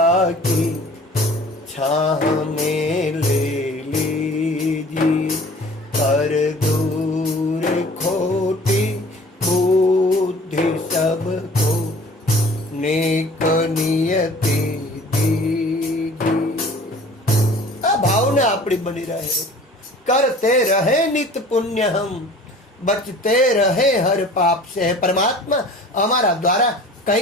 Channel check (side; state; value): both; normal; correlation 0.47